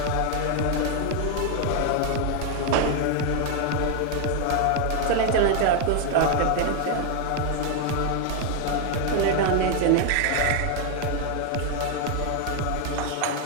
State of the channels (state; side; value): different; both; correlation 0.00